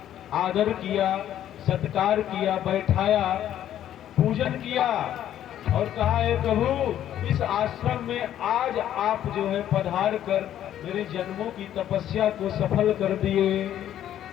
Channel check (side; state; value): right; quieter; 11.3 dB